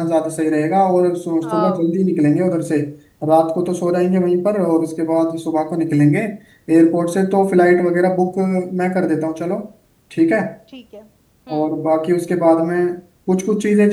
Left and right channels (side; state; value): both; identical; correlation 1.00